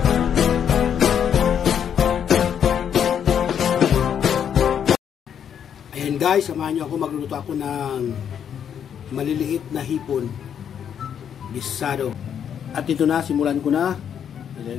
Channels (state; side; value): quieter; right; 8.5 dB